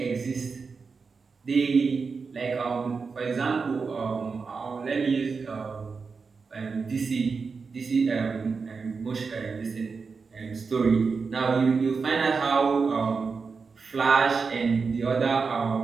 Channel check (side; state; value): left; quieter; 4.9 dB